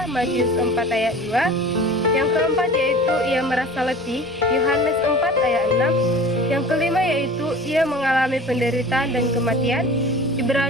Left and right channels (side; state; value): both; normal; correlation 0.40